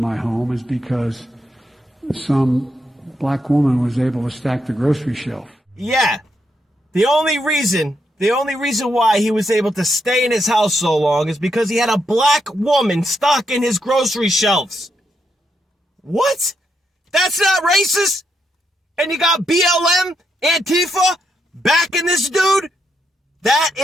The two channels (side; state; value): both; normal; correlation 0.80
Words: my home is because some black woman was able to stack the grocery shelf. Yeah. The only reason why he was able to stay in his house so long is because he had a black woman stocking his grocery shelves. What? That's not racist? And you got BLM, Antifa, backing this dude? That